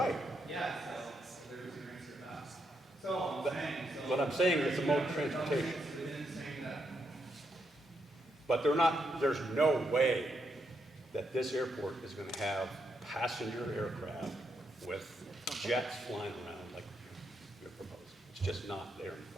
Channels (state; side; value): normal; both; correlation 0.80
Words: Yeah, so there's your answer to that. So I'm saying, so. But I'm saying it's a mode of transportation. Within saying that. But there's no way that this airport is going to have passenger aircraft with jets flying around like you're proposing. It's just not there in the